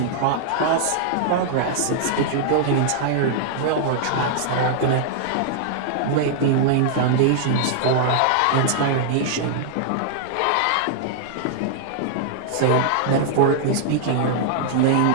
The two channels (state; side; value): different; both; correlation -0.01